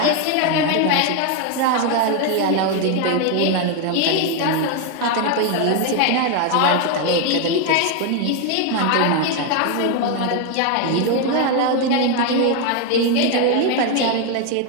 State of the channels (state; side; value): different; both; correlation 0.01